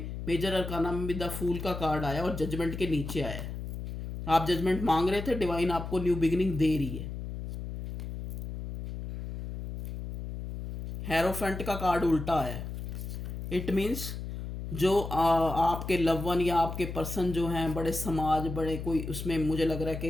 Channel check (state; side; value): noise; left; hum, 7 dB below the sound